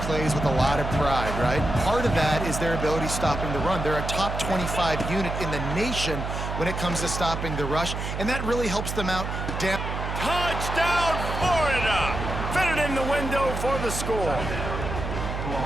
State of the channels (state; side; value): noise; right; hum, 4 dB below the sound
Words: plays with a lot of pride, right? Part of that is their ability stopping the run. They're a top 25 unit in the nation when it comes to stopping the rush, and that really helps them out down. Touchdown, Florida! Fitted in the window for the score.